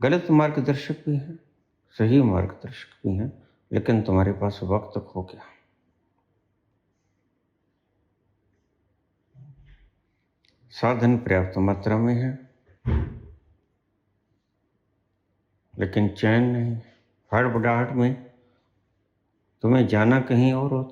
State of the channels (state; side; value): identical; both; correlation 1.00